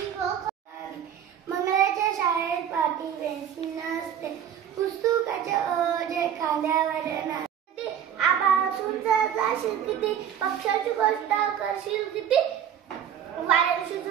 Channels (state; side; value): quieter; left; 9.2 dB